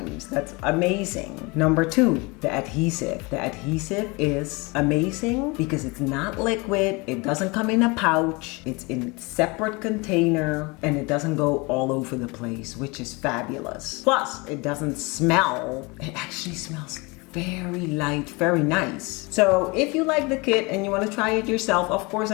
That's amazing. Number 2, the adhesive. The adhesive is amazing because it's not liquid, it doesn't come in a pouch, it's in a separate container, and it doesn't go all over the place, which is fabulous. Plus, it doesn't smell. It actually smells very light, very nice. So if you like the kit and you want to try it yourself, of course,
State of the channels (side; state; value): right; quieter; 26.7 dB